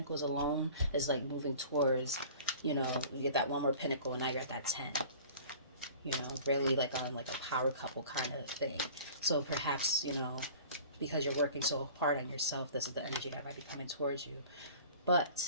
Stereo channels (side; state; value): both; inverted; correlation -0.44